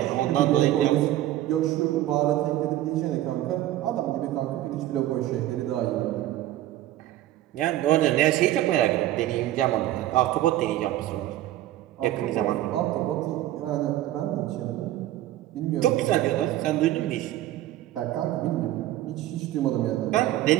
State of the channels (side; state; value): left; quieter; 14.2 dB